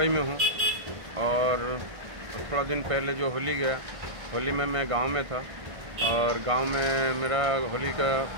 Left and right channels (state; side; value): late; left; 1.5 ms